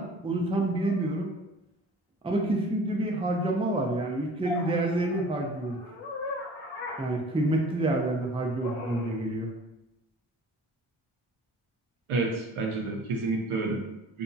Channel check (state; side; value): normal; both; correlation 0.48